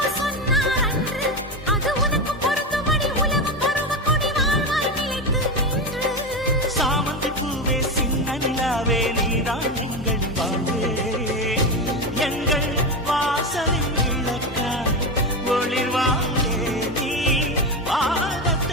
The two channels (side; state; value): both; normal; correlation 0.15